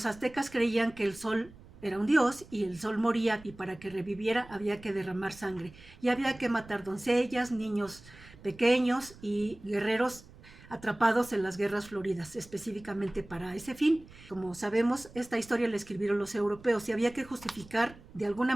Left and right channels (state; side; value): noise; right; rumble, 21 dB below the sound